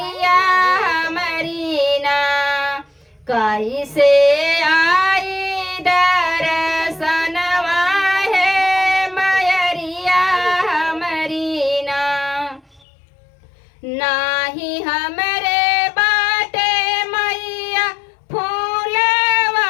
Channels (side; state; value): right; drops out; at 12.9 s